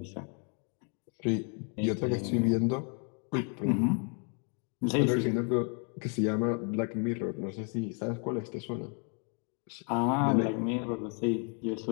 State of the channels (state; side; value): quieter; right; 39.1 dB